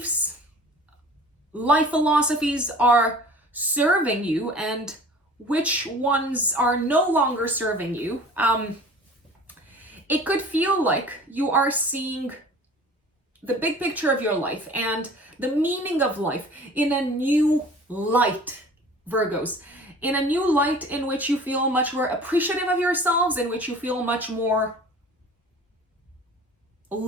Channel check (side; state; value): both; normal; correlation 0.44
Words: life philosophies are serving you and which ones are no longer serving you. It could feel like you are seeing the big picture of your life and the meaning of life in a new light, Virgos. In a new light in which you feel much more appreciative of yourselves, in which you feel much more